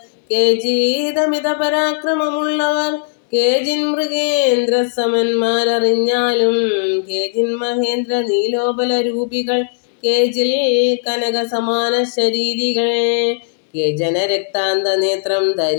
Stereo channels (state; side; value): silent; right; digital silence